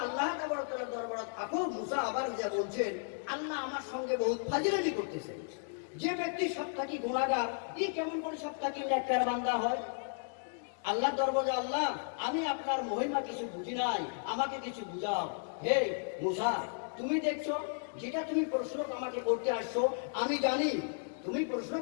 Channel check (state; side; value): silent; right; digital silence